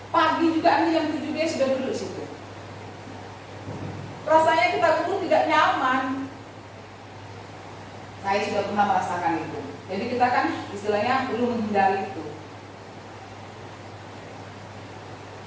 Pagi juga jam 7 dia sudah duduk di situ. Rasanya kita duduk tidak nyaman. Saya sudah pernah merasakan itu. Jadi kita kan istilahnya perlu menghindari itu.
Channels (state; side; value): identical; both; correlation 1.00